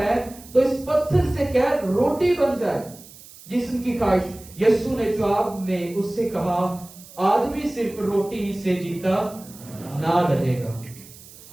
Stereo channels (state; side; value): noise; right; hiss, 20 dB below the sound